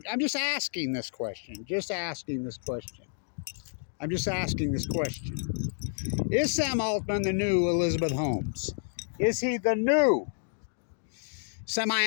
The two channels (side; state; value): right; silent; digital silence